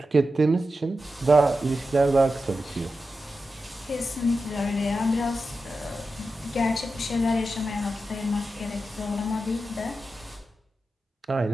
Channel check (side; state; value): both; normal; correlation 0.91